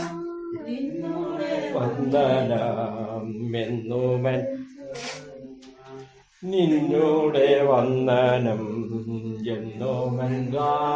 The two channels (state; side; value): identical; both; correlation 1.00